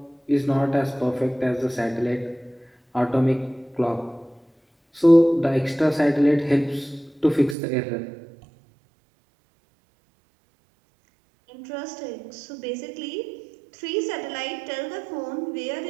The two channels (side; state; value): left; drops out; at 7.6 s